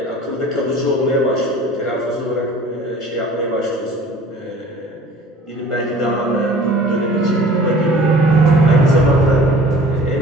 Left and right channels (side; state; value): both; normal; correlation 0.47